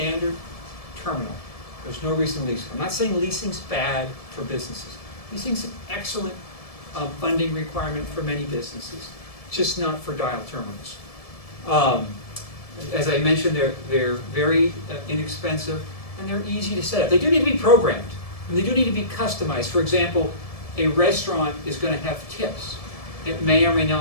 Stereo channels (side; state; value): right; late; 1.7 ms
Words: terminal, there's no reason to lease. I'm not saying leasing's bad for businesses. Leasing's an excellent funding requirement for many businesses, just not for dial terminals. As I mentioned, they're very inexpensive, and they're easy to set up. They do need to be programmed, and they do need to be customized. For example, a restaurant is going to have tips. It may or may